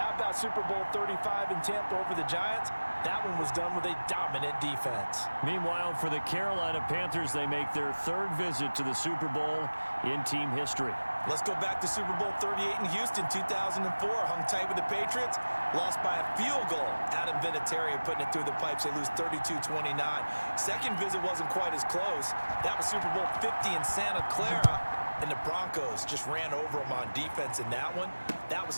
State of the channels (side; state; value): both; inverted; correlation -1.00